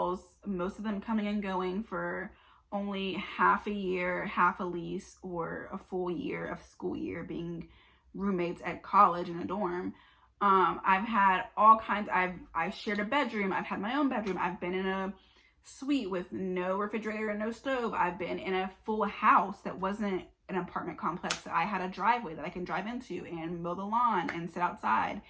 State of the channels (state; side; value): identical; both; correlation 1.00